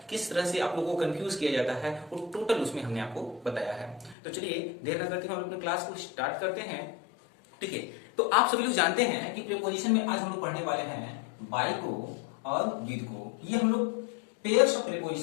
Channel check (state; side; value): drops out; right; at 4.2 s